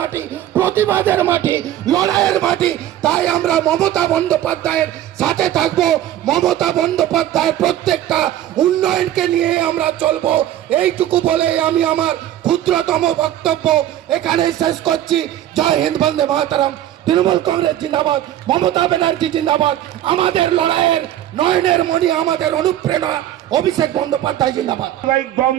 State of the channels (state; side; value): quieter; left; 12.4 dB